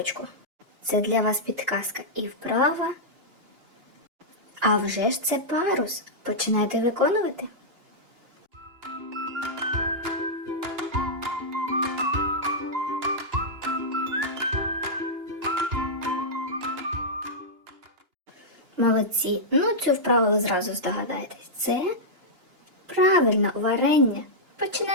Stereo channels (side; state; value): left; late; 2.9 ms